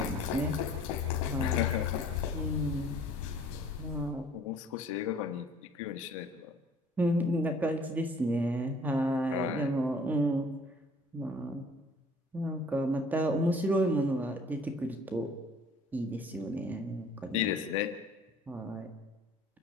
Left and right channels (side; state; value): both; normal; correlation 0.53